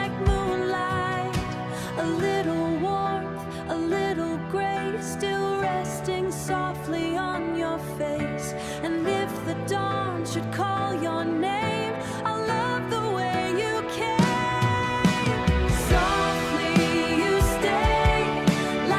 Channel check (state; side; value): identical; both; correlation 1.00